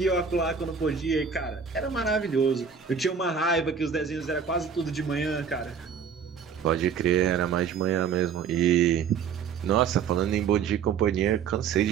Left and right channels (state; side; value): quieter; left; 6.7 dB